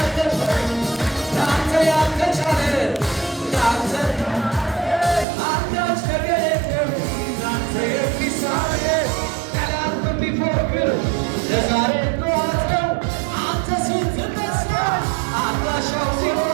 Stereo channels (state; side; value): drops out; left; at 5.2 s